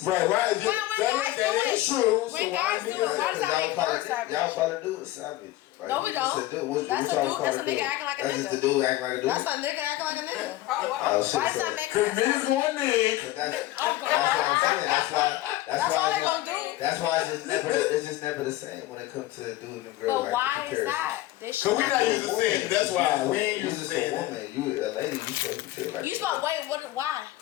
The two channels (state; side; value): quieter; right; 16.1 dB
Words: Right, right. When guys do it, is true. When guys do it, why does that make her savage? Y'all probably do it savage. Like, No, we don't. That's a dude. That's a nigga acting like a nigga. That's just a dude acting like a dude. That's a nigga acting like a nigga. Oh, shit, Why does that make her Cause niggas savage? going Nick. But that's what I'm saying. That's all why they gonna do. That's why it's just never the same when it comes to dude and girl. But like, why the is comparison. that? They Cause should we not not. used to saying it. That's why we ain't You used to just saying a it. woman. You a lady. You supposed to be treated like You a supposed wait. What? Why?